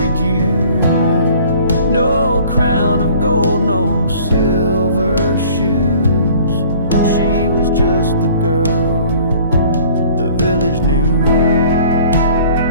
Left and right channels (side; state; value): both; inverted; correlation -0.51